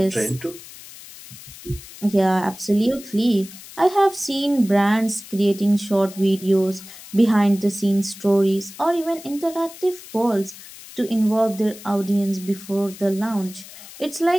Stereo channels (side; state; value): left; noise; hiss, 17 dB below the sound